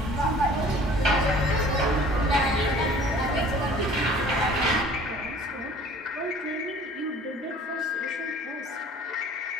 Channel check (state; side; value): normal; both; correlation 0.49